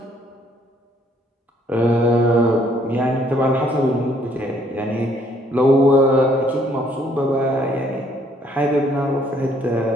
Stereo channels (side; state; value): both; normal; correlation 0.65